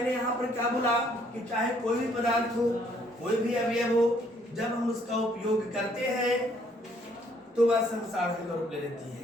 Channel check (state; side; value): normal; both; correlation 0.65